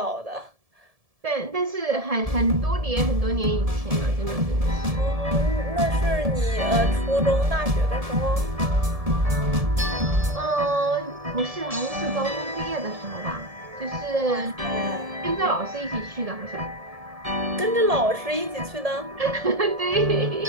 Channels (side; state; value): left; late; 1.7 ms